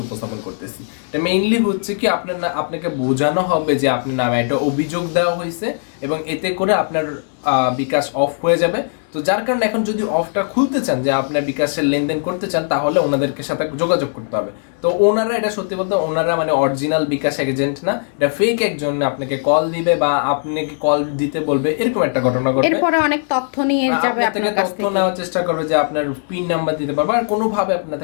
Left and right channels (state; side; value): silent; right; 67 dB below the other